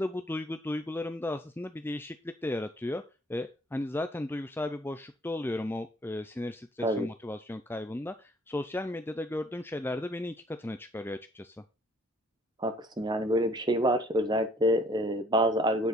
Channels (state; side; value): normal; both; correlation 0.60